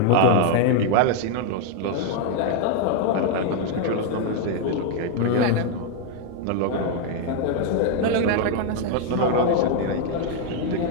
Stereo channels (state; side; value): different; both; correlation 0.00